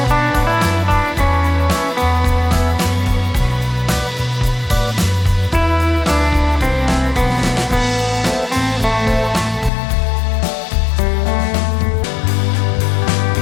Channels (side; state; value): right; drops out; at 9.7 s